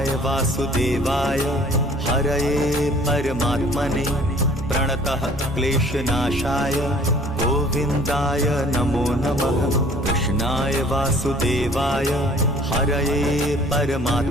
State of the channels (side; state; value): both; normal; correlation 0.53